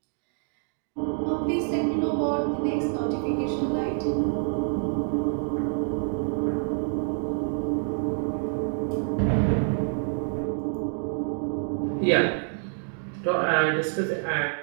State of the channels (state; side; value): silent; left; 60 dB below the other